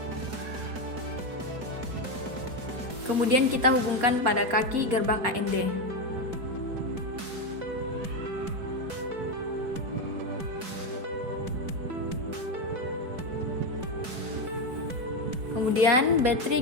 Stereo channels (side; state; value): left; late; 4.3 ms